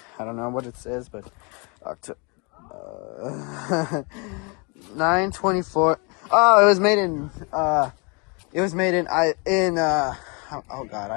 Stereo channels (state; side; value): quieter; right; 31.7 dB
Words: I don't know what it says, but October 9/24. Oh, it was made in oh god,